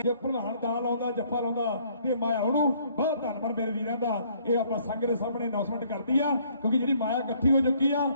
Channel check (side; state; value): both; inverted; correlation -0.63